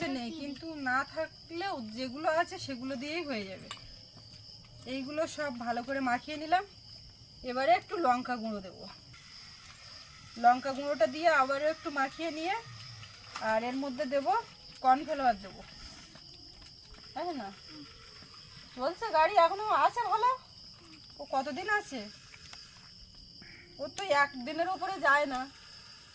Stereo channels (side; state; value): both; identical; correlation 1.00